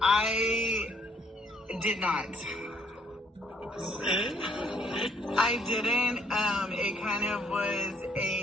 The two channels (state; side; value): normal; both; correlation 0.67